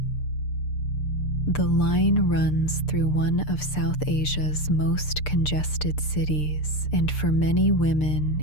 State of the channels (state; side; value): late; right; 6.7 ms